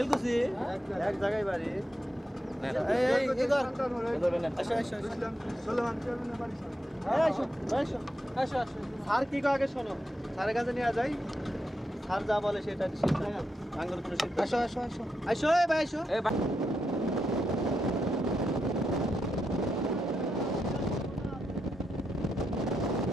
এক জায়গায় বাড়ি। এই কি কর আসো আসো সুলেমান চেয়ারম্যানের বাড়ি আসো আসো আসো আসো স্যার কি কো আগে শোনো স্যারের কাছে নিয়ে যাই স্যার যা বলে সেটা সিদ্ধান্ত আঙ্গুর কোনো সিদ্ধান্ত আসো আসো আসো আসো এই ভাই আসো এই ভাই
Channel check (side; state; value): both; normal; correlation 0.85